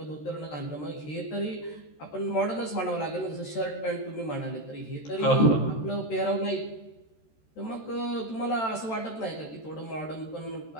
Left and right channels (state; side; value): late; right; 13 ms